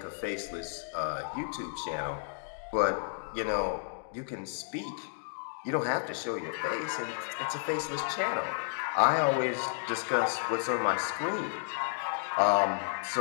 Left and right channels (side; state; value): right; silent; digital silence